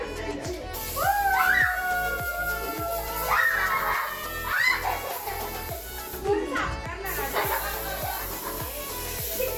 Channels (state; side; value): identical; both; correlation 1.00